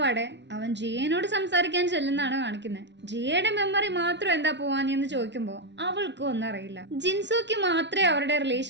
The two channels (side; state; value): left; late; 0.51 ms